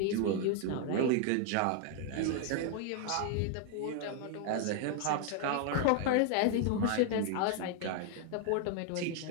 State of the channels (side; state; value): both; different; correlation 0.00